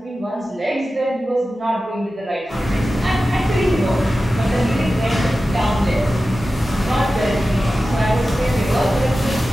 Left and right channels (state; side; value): normal; both; correlation 0.94